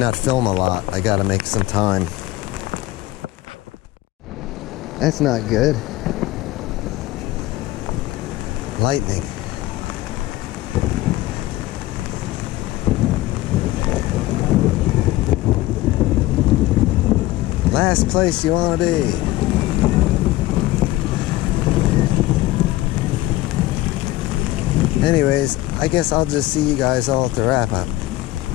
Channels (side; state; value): right; quieter; 17.1 dB